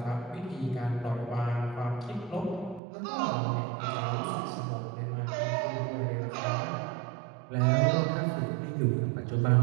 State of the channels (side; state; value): left; drops out; at 2.8 s